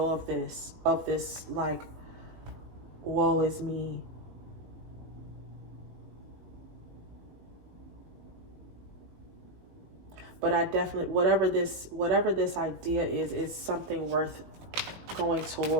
of this like, woe is me. But I definitely, whatever this idea is something worth going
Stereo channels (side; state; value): left; late; 18 ms